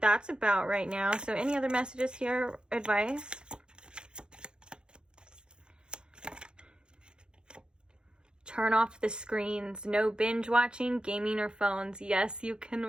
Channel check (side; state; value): left; late; 0.049 ms